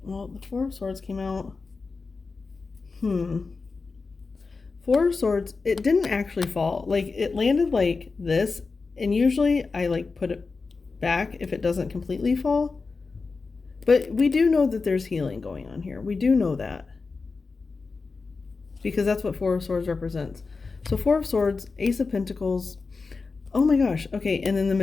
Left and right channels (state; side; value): quieter; right; 4.3 dB